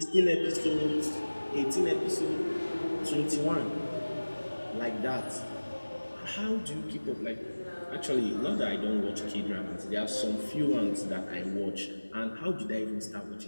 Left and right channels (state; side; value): inverted; both; correlation -1.00